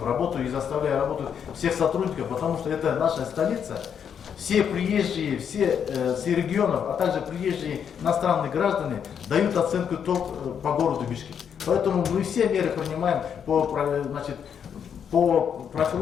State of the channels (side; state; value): right; quieter; 7.9 dB